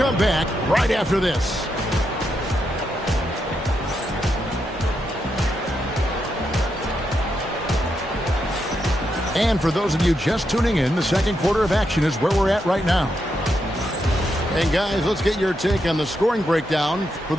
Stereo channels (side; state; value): both; normal; correlation 0.83